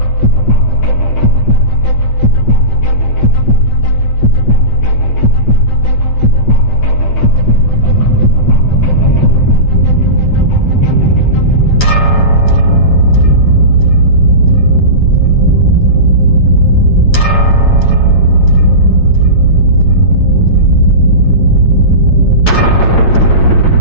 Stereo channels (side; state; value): right; late; 8.7 ms